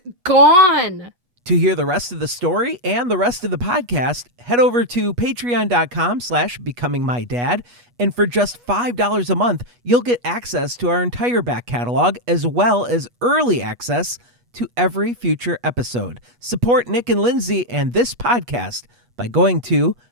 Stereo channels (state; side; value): late; left; 8.3 ms